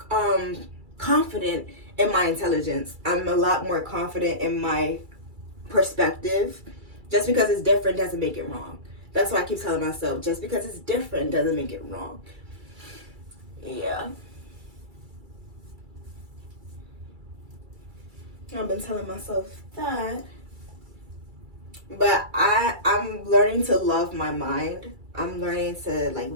confident in my intelligence. I'm a lot more confident in my perspective. Just because it's different doesn't make it wrong. That's why I keep telling myself, just because it's different doesn't make it wrong. Yeah. I've been telling myself that. But I'm learning to love my mind. I'm learning to like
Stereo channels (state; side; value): late; left; 2.3 ms